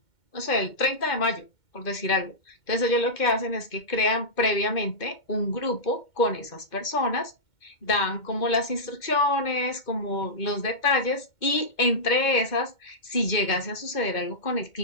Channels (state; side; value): late; right; 2.2 ms